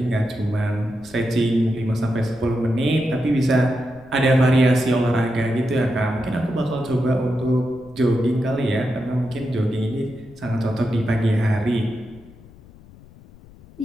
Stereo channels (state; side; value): noise; left; rumble, 23 dB below the sound